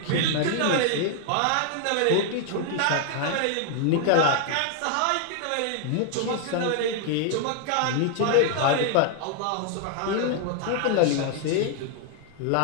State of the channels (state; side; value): different; both; correlation 0.00